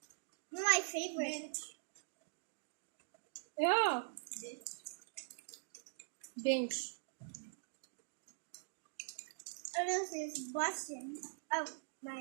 My favorite. Yeah. Binge. Oh, this is busting. Oh,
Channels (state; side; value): silent; left; digital silence